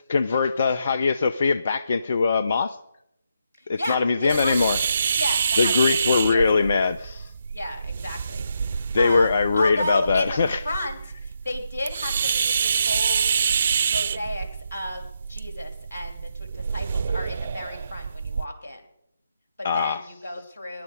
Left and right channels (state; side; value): inverted; both; correlation -0.81